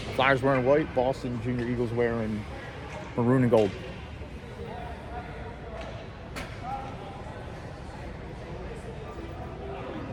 Flyers wearing white, Boston Junior Eagles wearing maroon and gold.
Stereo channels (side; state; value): both; identical; correlation 1.00